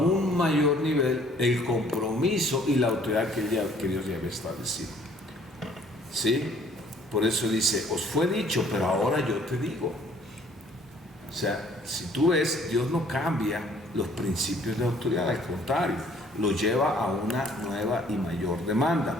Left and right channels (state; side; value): normal; both; correlation 0.58